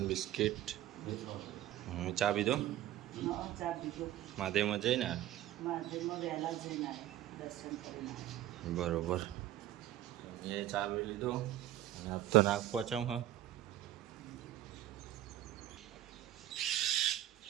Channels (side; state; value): left; quieter; 13.5 dB